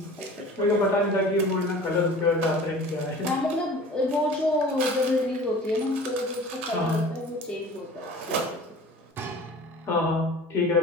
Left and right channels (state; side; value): normal; both; correlation 0.42